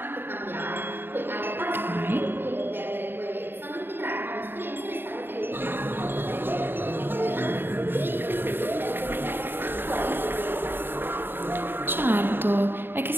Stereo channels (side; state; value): left; late; 0.099 ms